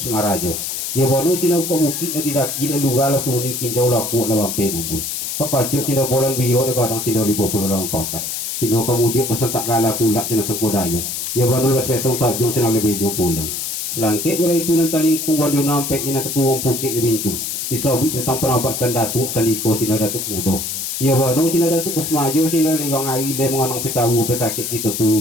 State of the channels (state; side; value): noise; left; hiss, 4 dB below the sound